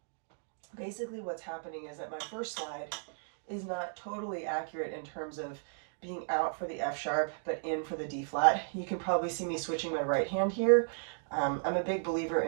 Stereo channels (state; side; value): silent; left; digital silence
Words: Basically what's happening is that my first slide is not totally accurate in terms of being out for the F sharp but in for the D flat. You can probably see me switching my right hand here. I'm a big believer